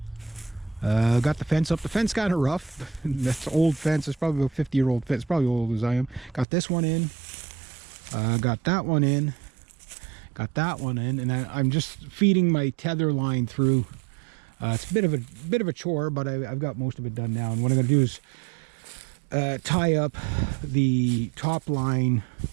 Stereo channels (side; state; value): left; drops out; at 6.5 s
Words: Got the fence up. The fence kind of rough. That's old fence. It's probably a 50-year-old fence. Probably old as I am. Got this one in. Got that one in. Got that one in. And I'm just feeding my tether line through. It's a bit of a chore, but I've got most of it done now. And what I'm going to do is tie up the top line